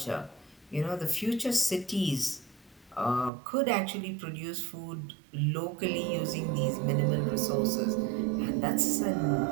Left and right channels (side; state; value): left; drops out; at 3.3 s